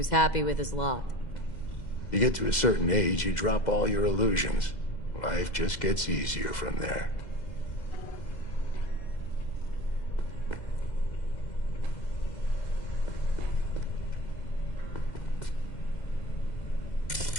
happy with his lot. You get to a certain age, you drop all your illusions. Life just gets easier from there.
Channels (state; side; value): late; right; 2.0 ms